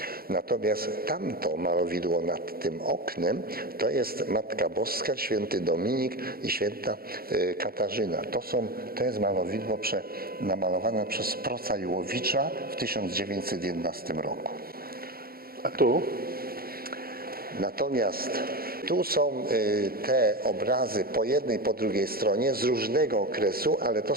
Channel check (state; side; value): late; left; 0.44 ms